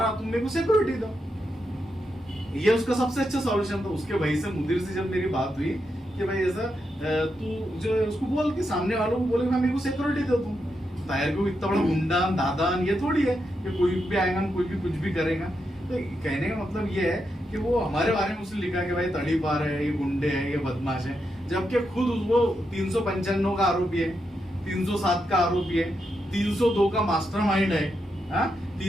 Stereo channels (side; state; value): both; normal; correlation 0.84